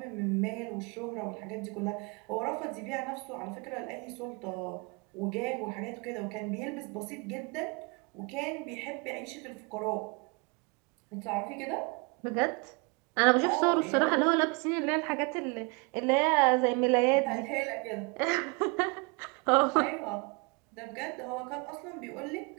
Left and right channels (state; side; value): quieter; left; 30.5 dB